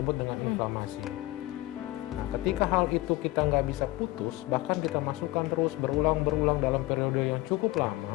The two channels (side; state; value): right; quieter; 18.8 dB